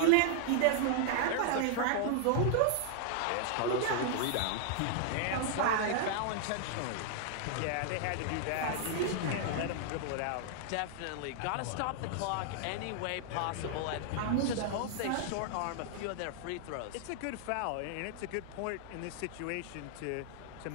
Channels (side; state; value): both; different; correlation 0.00